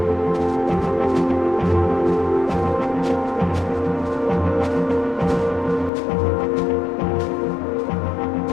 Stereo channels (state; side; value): drops out; right; at 5.9 s